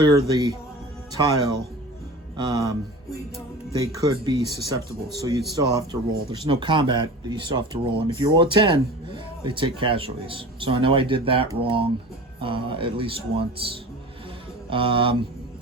the tile. They could be susceptible, so you'd still have to roll. There's no combat, but you still have to roll. And if you roll a 10, they take casualties. So I know I did that wrong at least once.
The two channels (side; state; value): both; normal; correlation 0.36